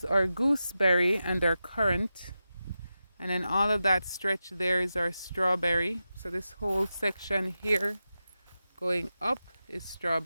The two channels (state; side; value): inverted; both; correlation -0.91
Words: our gooseberry and our currant, and then all of that stretch there is our strawberry. So this whole section here going up is